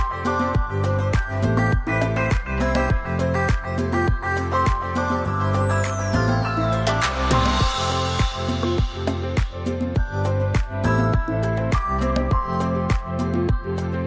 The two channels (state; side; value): identical; both; correlation 1.00